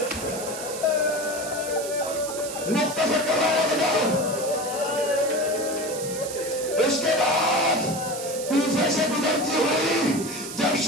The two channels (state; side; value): noise; right; hiss, 9 dB below the sound